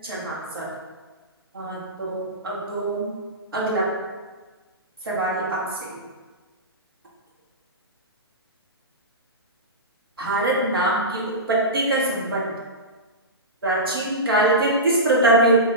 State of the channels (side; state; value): both; normal; correlation -0.17